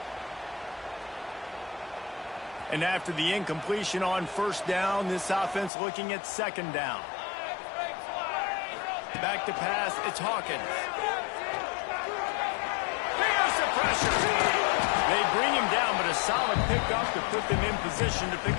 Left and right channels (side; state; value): right; drops out; at 5.7 s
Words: And after the incompletion on first down, this offense looking at second down. Back to pass, it's Hawkins. There's the pressure. They bring him down, but a solid pickup to put them in position to pick